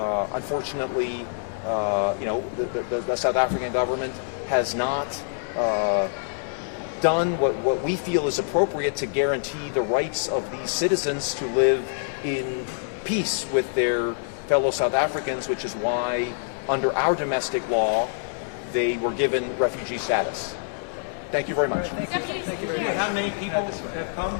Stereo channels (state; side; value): silent; right; digital silence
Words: unfortunately, the South African government has not done what we feel is appropriate to guarantee the rights of these citizens to live in peace with their fellow South Africans, which is why, under our domestic law, they were given refugee status. Thank you very much. Thank you very much. How many people have come?